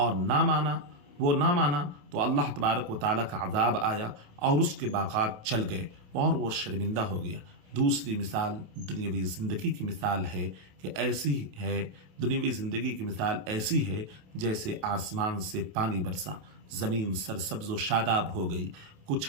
نہ مانا تو اللہ تبارک و تعالیٰ کا عذاب آیا اور اس کے باغات چل گئے اور وہ شرمندہ ہو گیا۔ دوسری مثال دنیاوی زندگی کی مثال ہے کہ ایسی ہے، دنیاوی زندگی کی مثال ایسی ہے جیسے آسمان سے پانی برسا، زمین سرسبز و شاداب ہو گئی، کچھ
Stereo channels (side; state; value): left; late; 28 ms